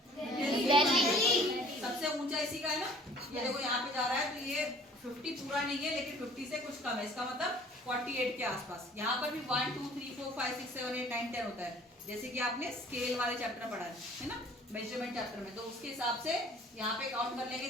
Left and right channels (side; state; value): both; normal; correlation 0.52